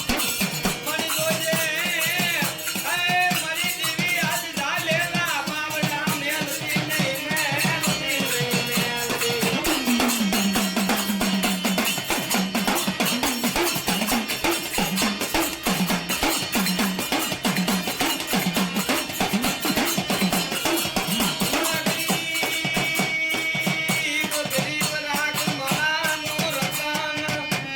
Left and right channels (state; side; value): noise; right; hum, 29 dB below the sound